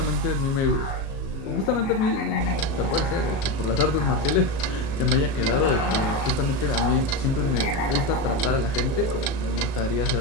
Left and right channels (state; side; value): late; right; 37 ms